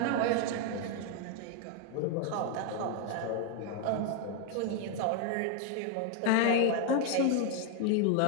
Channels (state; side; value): different; both; correlation 0.00